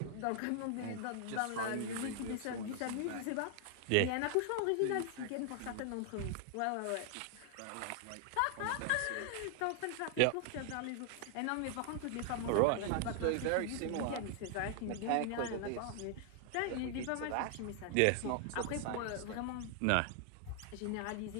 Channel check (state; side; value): different; both; correlation 0.00